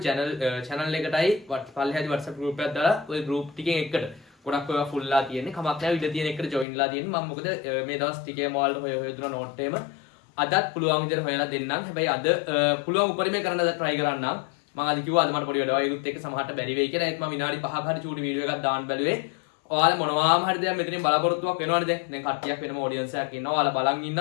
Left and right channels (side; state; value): right; drops out; at 6.7 s